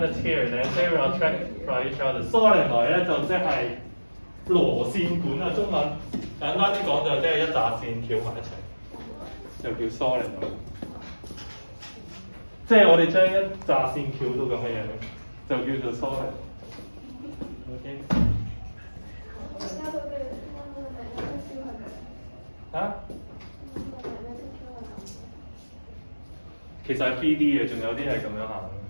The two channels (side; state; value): both; inverted; correlation -1.00